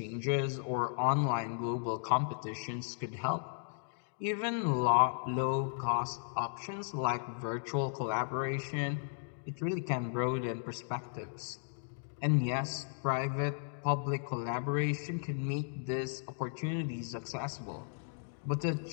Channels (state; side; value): silent; right; digital silence